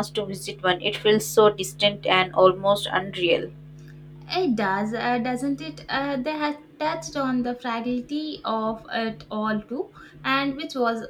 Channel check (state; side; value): identical; both; correlation 1.00